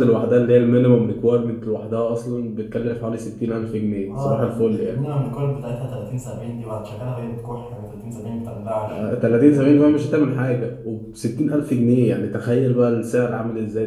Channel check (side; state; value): both; identical; correlation 1.00